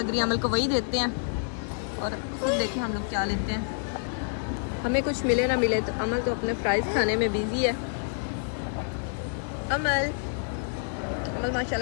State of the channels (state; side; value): silent; right; digital silence